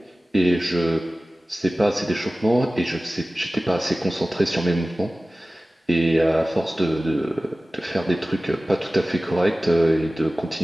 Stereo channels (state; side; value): normal; both; correlation 0.97